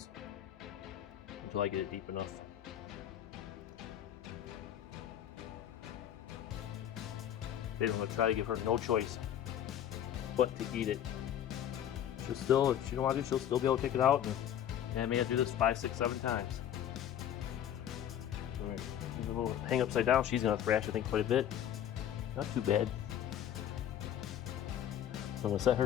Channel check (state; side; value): quieter; right; 10.4 dB